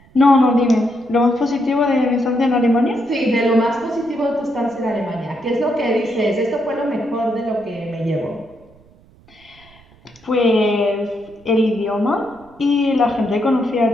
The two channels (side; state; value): right; noise; rumble, 28 dB below the sound